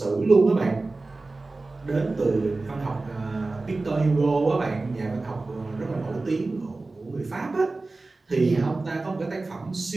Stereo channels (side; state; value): left; quieter; 3.4 dB